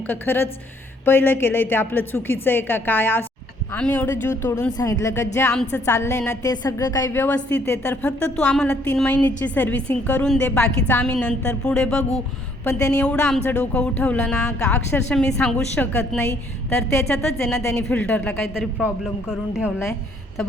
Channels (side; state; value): both; normal; correlation 0.65